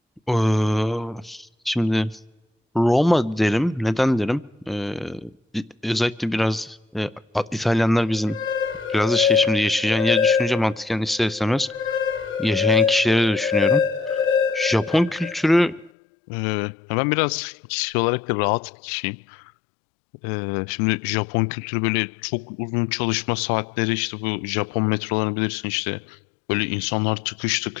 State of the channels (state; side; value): drops out; right; at 15.9 s